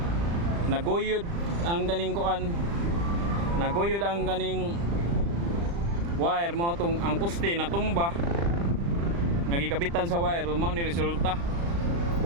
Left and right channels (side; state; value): left; late; 35 ms